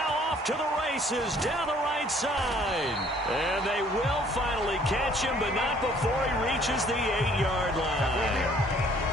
off to the races down the right side. And they will finally catch him, but not before he reaches the 8-yard line.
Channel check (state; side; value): normal; both; correlation 0.59